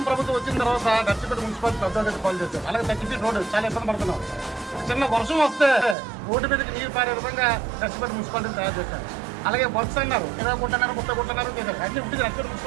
ప్రభుత్వం వచ్చిన తర్వాత నర్సీపట్నం మున్సిపాలిటీ పెద్ద పాలు చేశారు. అలాగే 30 ఫీట్ రోడ్డు చాలా ఇబ్బంది పడుతున్నాం. చిన్న వర్షం వస్తే రోడ్డు మీదకి నీరు పారే విధంగా నర్సీపట్నం మున్సిపాలిటీని తయారు చేశారు. అలాగే వర్క్స్ అన్నారు 20 కోట్లు అన్నారు, 30 కోట్లు అన్నారు చేశారు. అన్ని ఉంటుంది నర్సీపట్నం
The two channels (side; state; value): left; drops out; at 6.0 s